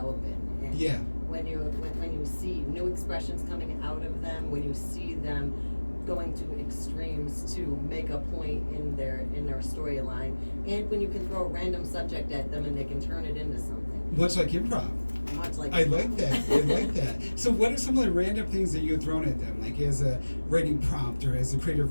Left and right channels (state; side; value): inverted; both; correlation -1.00